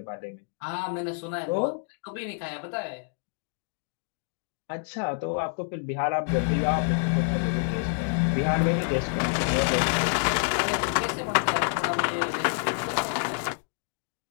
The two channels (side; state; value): right; silent; digital silence